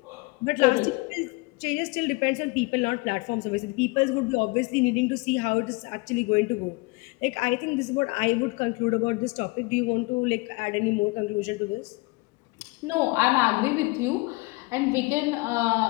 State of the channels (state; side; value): quieter; right; 25.8 dB